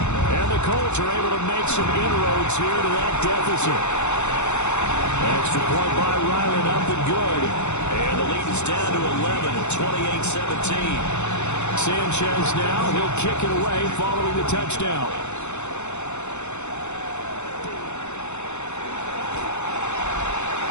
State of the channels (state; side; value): late; right; 0.82 ms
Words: And the Colts are able to make some inroads here to that deficit. Extra point by Ryland up and good. And the lead is down to 11 at 28-17. Sanchez now, he'll kick it away following the touchdown.